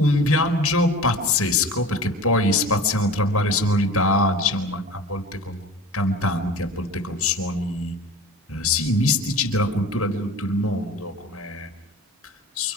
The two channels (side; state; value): both; normal; correlation 0.38